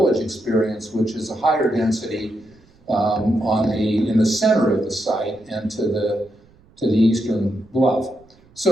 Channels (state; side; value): noise; right; rumble, 30 dB below the sound